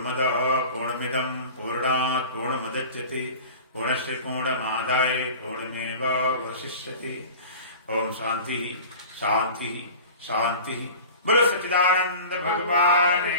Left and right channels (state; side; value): inverted; both; correlation -0.39